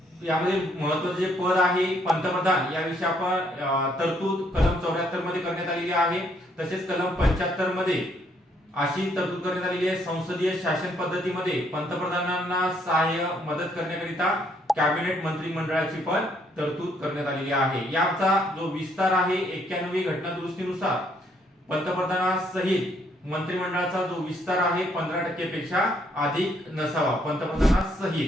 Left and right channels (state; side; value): normal; both; correlation 0.69